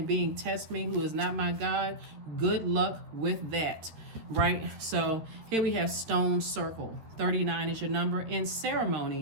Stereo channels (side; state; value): left; late; 13 ms